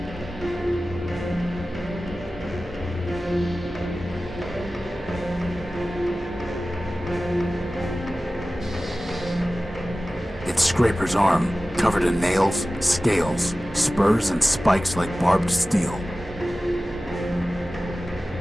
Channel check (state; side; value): normal; both; correlation 0.96